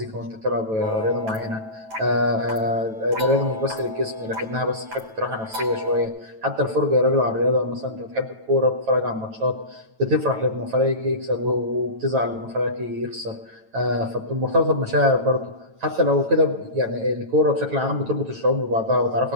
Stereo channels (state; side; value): late; left; 9.1 ms